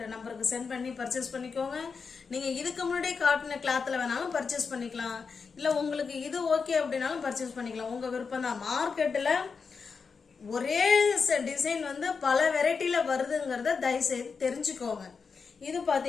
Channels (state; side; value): quieter; right; 5.3 dB